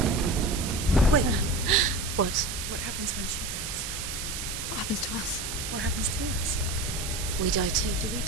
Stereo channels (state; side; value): noise; right; hiss, 5 dB below the sound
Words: Wait. What? What happens when she dies? What happens to us? What happens to us? We die too. Do we